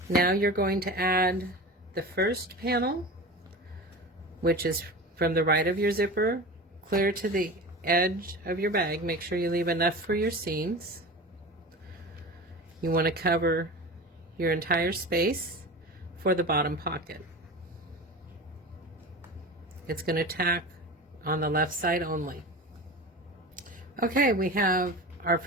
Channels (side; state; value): both; normal; correlation 0.31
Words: Now you're going to add the first panel, which is from the right of your zipper clear to the edge of your bag. Make sure you leave enough for your seams. You want to cover your entire space for the bottom pocket. It's going to tack on the left side only. Okay, we have our